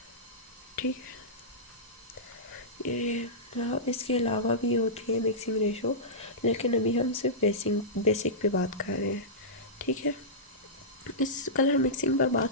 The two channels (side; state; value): both; normal; correlation -0.15